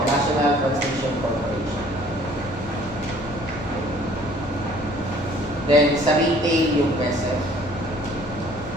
National Transmission Corporation. Then, sa retail, yung PESEF.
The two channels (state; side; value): normal; both; correlation 0.55